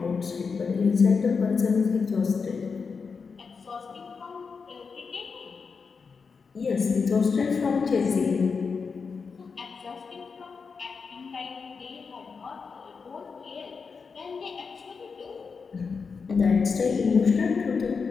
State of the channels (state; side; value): quieter; right; 5.3 dB